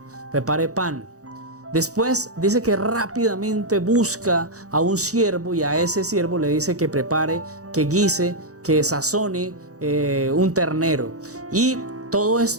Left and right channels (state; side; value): late; left; 0.66 ms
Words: prepare pan. Después dice que rápidamente busca a un siervo y a ese siervo le dice que prepare, que guise, que sazone un ternero. Y todo